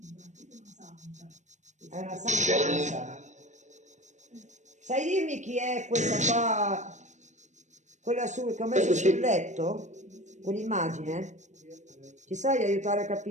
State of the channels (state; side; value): late; left; 0.34 ms